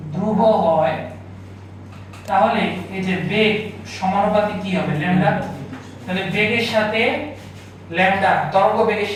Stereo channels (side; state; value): both; identical; correlation 1.00